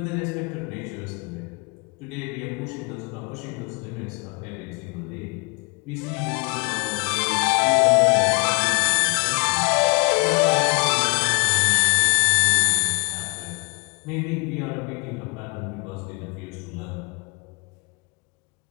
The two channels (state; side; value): quieter; right; 32.0 dB